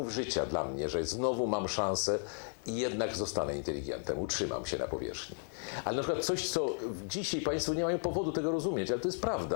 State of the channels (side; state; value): right; silent; 55 dB below the other